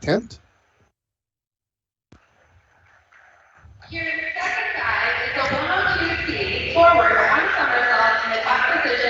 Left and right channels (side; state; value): both; identical; correlation 1.00